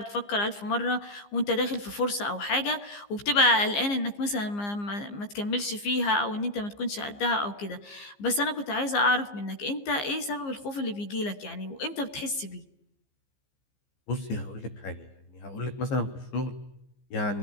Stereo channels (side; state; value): right; late; 15 ms